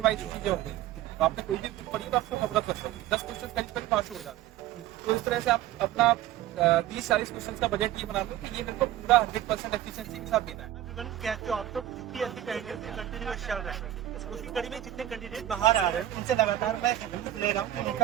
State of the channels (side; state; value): left; quieter; 13.1 dB